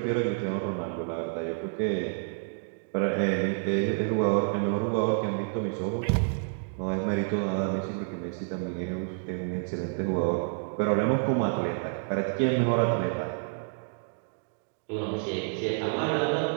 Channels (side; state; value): left; silent; 59 dB below the other